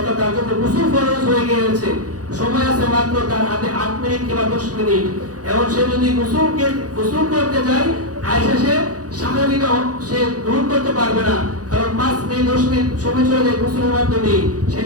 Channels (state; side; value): late; left; 0.67 ms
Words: তার জন্য গোসল ফরজ হয়ে গিয়েছে, সময় আছে মাত্র তার হাতে 8 মিনিট কিংবা 10 মিনিট, এবং সে যদি গোসল করতে যায় আয়সা সে স্বাভাবিক সে গ্রহণ করতে পারবে না, কারণ 5 মিনিট 10 মিনিট সময় চলে যায় গোসলের মাধ্যমে। সেই